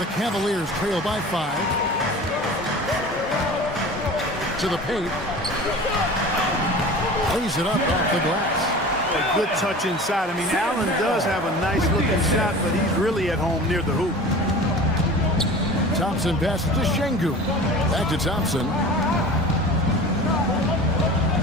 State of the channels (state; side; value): normal; both; correlation 0.38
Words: Cavaliers trail by 5. To the paint. Lays it up off the glass. A good touch inside. I mean, Allen does have a nice looking shot, but he's really at home near the hoop. Thompson passes to Şengün. Back to Thompson.